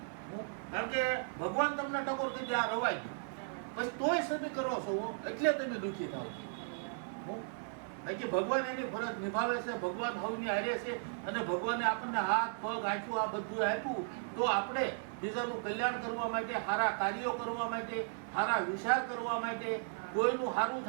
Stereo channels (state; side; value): silent; left; digital silence